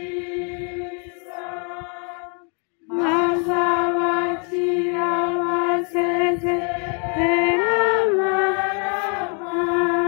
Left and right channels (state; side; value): quieter; right; 38.6 dB